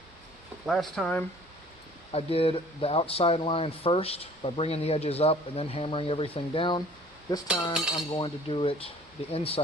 Last time I did the outside line first by bringing the edges up and then hammering everything down. This time I'm going to do it the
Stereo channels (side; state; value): both; normal; correlation 0.51